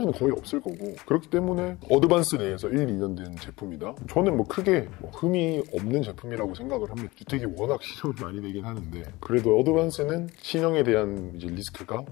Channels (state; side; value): quieter; right; 21.2 dB